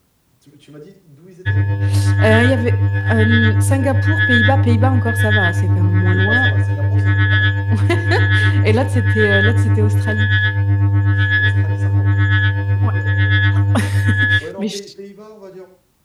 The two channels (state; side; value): identical; both; correlation 1.00